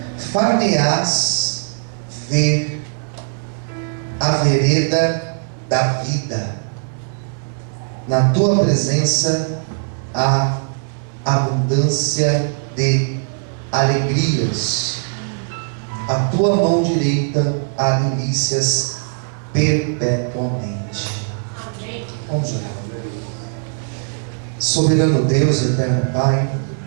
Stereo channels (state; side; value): silent; left; digital silence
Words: Far-me-ás ver a vereda da vida, na tua presença há abundância de alegrias, a tua mão direita há delícias perpetuamente. Amém. Vamos orar. Soberano Deus, eterno Pai,